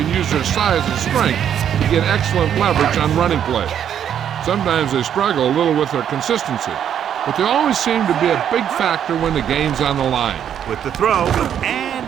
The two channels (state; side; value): quieter; left; 9.3 dB